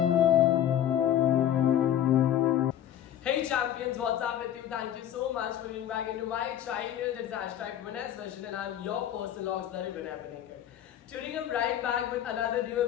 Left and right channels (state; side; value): quieter; right; 10.9 dB